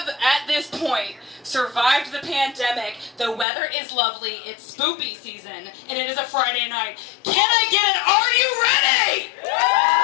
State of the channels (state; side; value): drops out; right; at 3.5 s